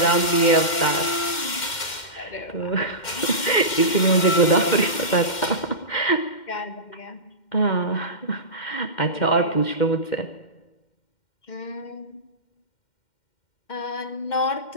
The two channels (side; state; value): right; late; 2.1 ms